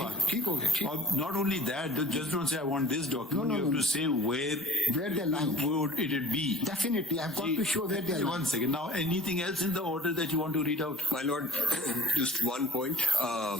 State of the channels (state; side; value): normal; both; correlation 0.47